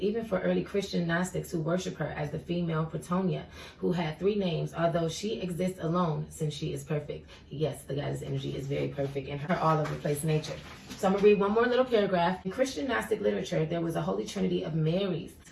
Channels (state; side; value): identical; both; correlation 1.00